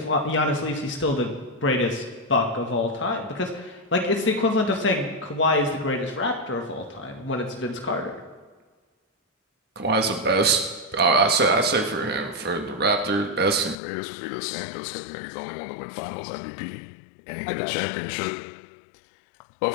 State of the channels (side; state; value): right; drops out; at 13.8 s